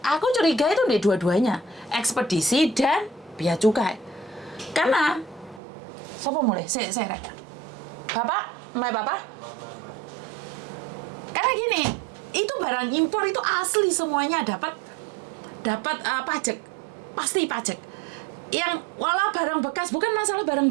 Aku curiga itu di dua-duanya. Ekspedisi dan bea cukai. Karena siapa mulai? Saya Bapak? Mbak Bapak? Karena gini, itu barang impor itu asli semuanya dapat pajak. Pasti pajak. Yang walau barang bekas, bukan masalah barang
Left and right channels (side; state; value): left; drops out; at 5.6 s